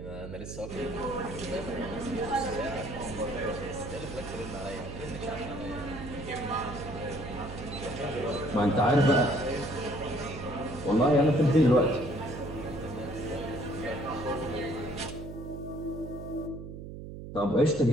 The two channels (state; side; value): noise; right; hum, 10 dB below the sound